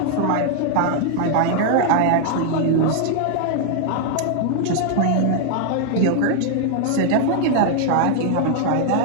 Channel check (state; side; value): different; both; correlation 0.00